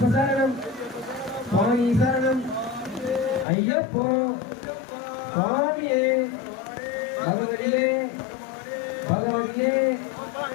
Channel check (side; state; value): right; drops out; at 3.5 s